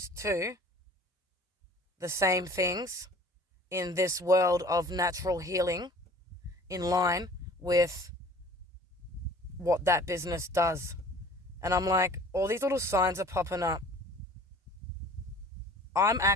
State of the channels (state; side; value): normal; both; correlation 0.48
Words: to the same things in this world of natural healing in line with what that business does. And I'm like, all these little signs are popping up. I'm